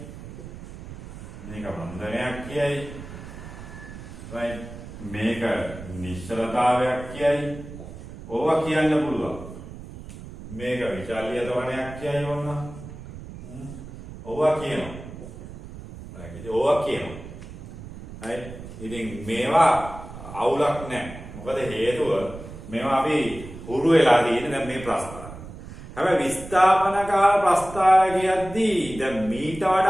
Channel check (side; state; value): right; noise; rumble, 13 dB below the sound